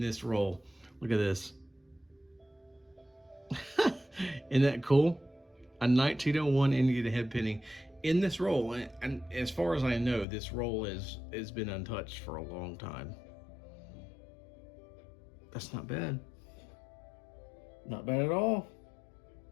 this roll. Look at this. Isn't that cool? A 1901 Indian head penny in this roll. And as far as I know, this roll has been untouched for a long time. That's not bad. Not bad at all.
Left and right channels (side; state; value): right; drops out; at 10.2 s